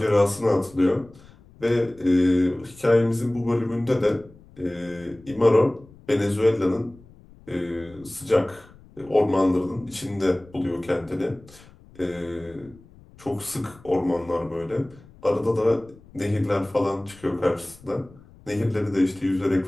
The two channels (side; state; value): left; noise; rumble, 24 dB below the sound